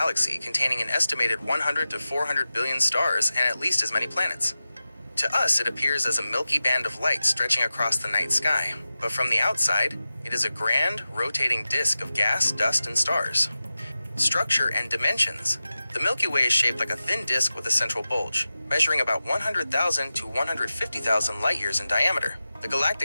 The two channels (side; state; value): both; inverted; correlation -0.94